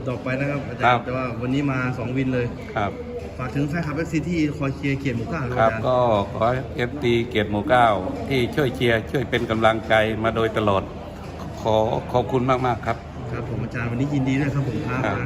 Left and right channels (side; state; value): both; identical; correlation 1.00